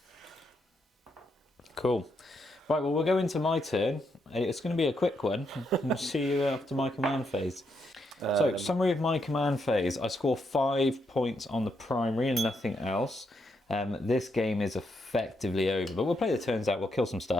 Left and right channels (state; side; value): normal; both; correlation 0.79